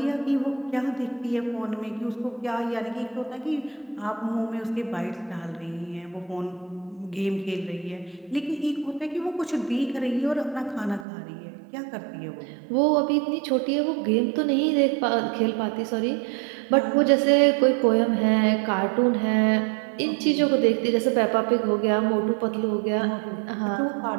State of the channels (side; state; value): left; drops out; at 11.1 s